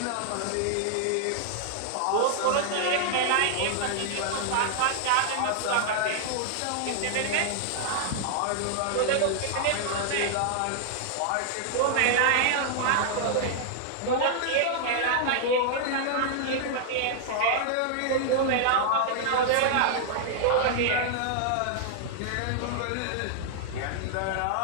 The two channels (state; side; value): different; both; correlation -0.01